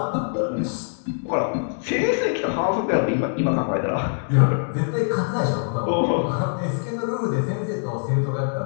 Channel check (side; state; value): right; silent; digital silence